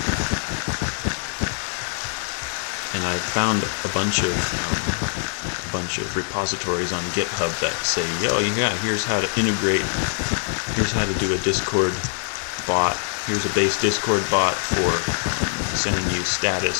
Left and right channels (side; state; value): right; silent; digital silence